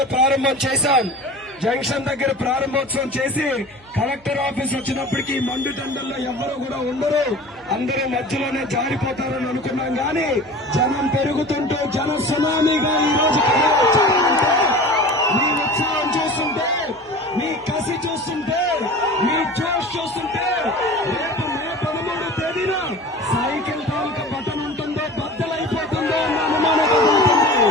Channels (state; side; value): noise; left; hum, 29 dB below the sound